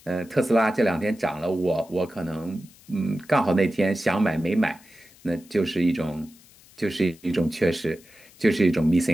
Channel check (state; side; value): noise; left; hiss, 26 dB below the sound